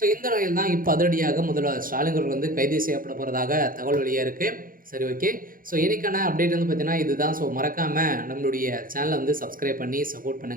இந்த நிலையில் தான் இப்போ அதிரடியாக முதல்வர் ஸ்டாலின் அவர்கள் கைது செய்யப்பட போகிறதாக தகவல் வெளியாக இருக்குது. சரி, ஓகே. இன்னைக்கான அப்டேட் பார்த்தீங்கன்னா இதுதான். மறக்காமல் நம்மளுடைய சேனலை சப்ஸ்கிரைப் பண்ணி சப்போர்ட்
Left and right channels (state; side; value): late; left; 0.41 ms